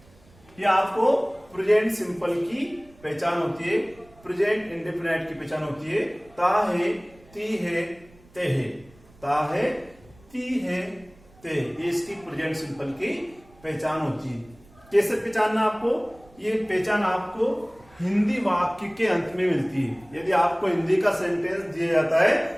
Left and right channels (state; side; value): noise; right; rumble, 27 dB below the sound